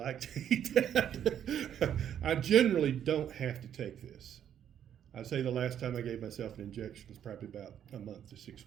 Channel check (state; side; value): quieter; left; 9.6 dB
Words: to eat that. I generally don't have to take this. I'd say the last time I gave myself an injection was probably about a month to 6